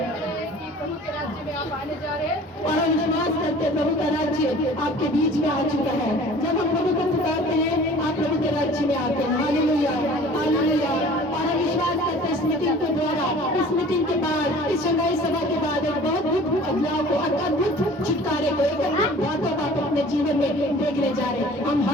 प्रभु के राज्य में आप आने जा रहे हैं और हम विश्वास करते हैं प्रभु का राज्य आपके बीच में आ चुका है। जब हम प्रभु को पुकारते हैं, आप प्रभु के राज्य में आते हैं। Hallelujah, hallelujah. और हम विश्वास करते हैं, स्मृति मीटिंग के द्वारा, इस मीटिंग के बाद, इस शंघाई सभा के बाद एक बहुत अद्भुत बदलाव को, अद्भुत छुटकारे को, एक अद्भुत बातों को आप अपने जीवन में देखने जा रहे हैं। हम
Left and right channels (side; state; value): both; normal; correlation 0.47